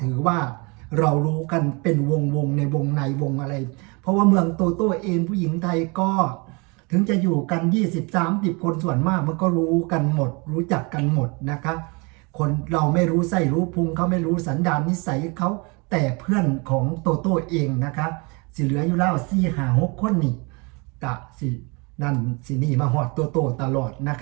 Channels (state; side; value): quieter; left; 29.8 dB